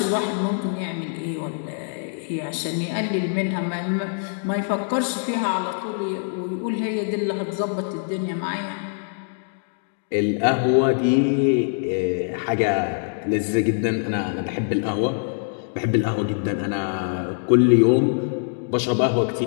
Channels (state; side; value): silent; right; digital silence